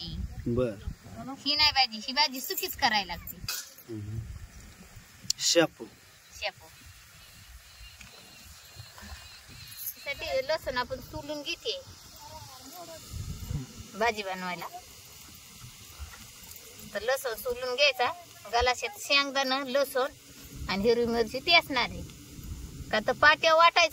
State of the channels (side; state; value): both; identical; correlation 1.00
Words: बर, ही नाही भाजी, ही भाजी सुकीच करायला लागते। शापू शेपू साठी लसूण आपण सोलून घेते भाजी बनवायला। तर लसूण सोलून घ्यायचा, गलाशात शेंगदाणा, लसूण आणि हिरवी मिरची ती असणार आहे का। तर पाट्या